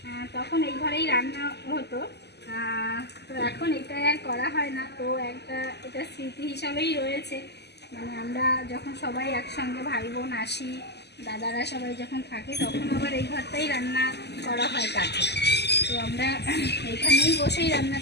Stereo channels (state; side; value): late; right; 0.49 ms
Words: তখন এই ঘরেই রান্না হতো। তো এখন এটা আর করা হয় না, তো এটা স্মৃতি হিসাবেই রয়েছে। মানে আমরা যখন সবাই একসঙ্গে ভাই বোন আসি, দাদারা সবাই যখন থাকে, তখন আবার এই ঘরটাই রান্না করা হয় কাঠে। তো আমরা এখানেই বসেই